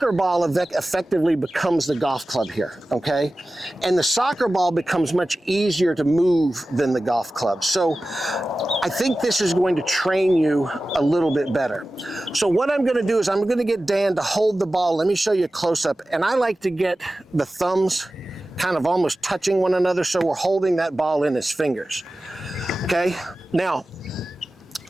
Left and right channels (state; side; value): normal; both; correlation 0.95